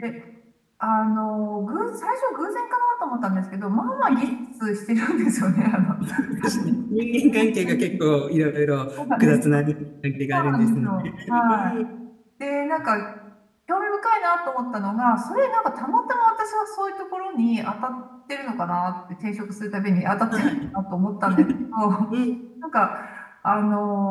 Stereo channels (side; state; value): both; identical; correlation 1.00